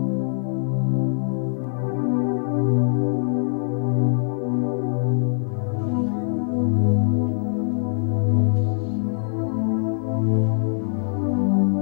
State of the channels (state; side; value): silent; right; 64 dB below the other